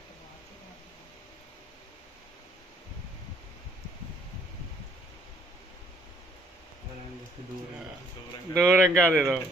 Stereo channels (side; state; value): both; normal; correlation 0.65